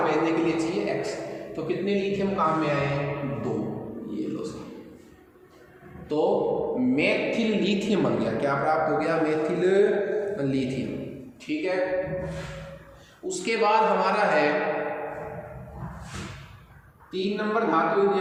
भेजने के लिए चाहिए X, तो कितने लिथियम काम में आए? 2। ये लो सर, तो मेथिल लिथियम बन गया। क्या प्राप्त हो गया? Methyl lithium. ठीक है, उसके बाद हमारा है 3 नंबर धातु यदि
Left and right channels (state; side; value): identical; both; correlation 1.00